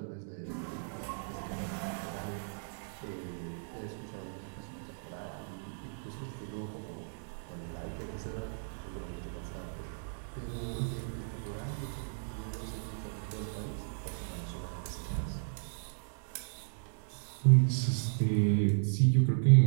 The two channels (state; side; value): silent; left; digital silence